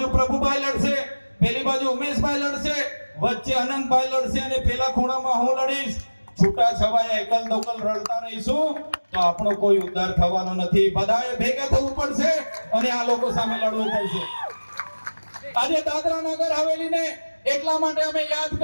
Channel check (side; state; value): both; inverted; correlation -1.00